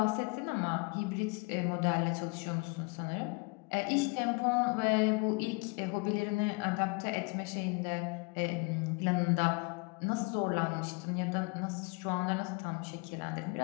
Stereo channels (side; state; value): right; quieter; 30.5 dB